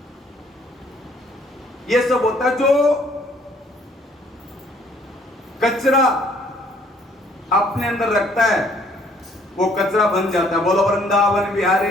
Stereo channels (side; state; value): both; normal; correlation 0.62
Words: यह सब होता है। जो कचरा अपने अंदर रखता है वो कचरा बन जाता है। बोलो वृंदावन बिहारी